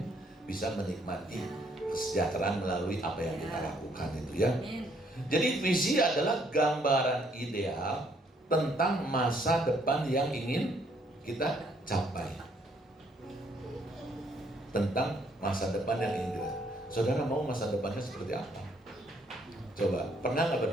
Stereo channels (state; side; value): normal; both; correlation 0.68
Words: bisa menikmati kesejahteraan melalui apa yang kita lakukan itu ya. Jadi visi adalah gambaran ideal tentang masa depan yang ingin kita capai. Tentang masa depan yang ingin kita. Saudara mau masa depannya seperti apa? Coba, pernah nggak